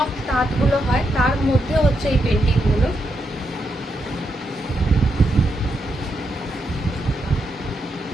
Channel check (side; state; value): both; normal; correlation 0.82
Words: তাঁতগুলো হয় তার মধ্যে হচ্ছে এই পেন্টিংগুলো।